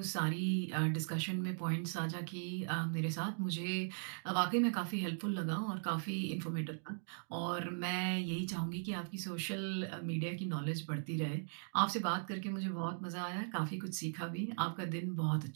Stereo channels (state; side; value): silent; left; digital silence